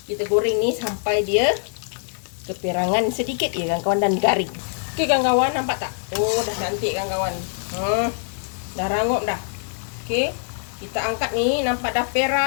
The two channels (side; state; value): right; silent; 63 dB below the other